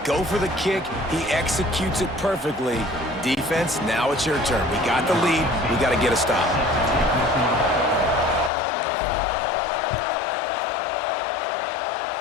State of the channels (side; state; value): right; drops out; at 8.5 s